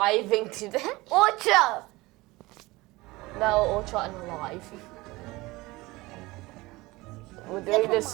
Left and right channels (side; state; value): left; quieter; 21.1 dB